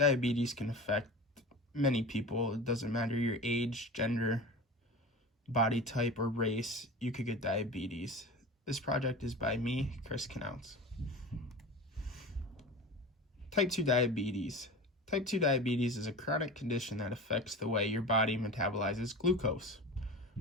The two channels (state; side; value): normal; both; correlation 0.33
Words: can affect many people. It doesn't matter your age, gender, body type, or race. You could get diabetes. This project is by me, Chris Knautz. Type 2 diabetes. Type 2 diabetes is a chronic condition that affects the way your body metabolizes glucose,